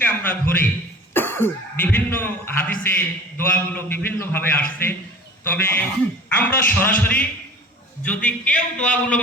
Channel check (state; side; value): normal; both; correlation 0.42